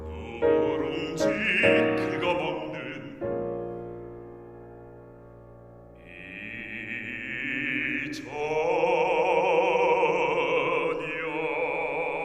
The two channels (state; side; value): identical; both; correlation 1.00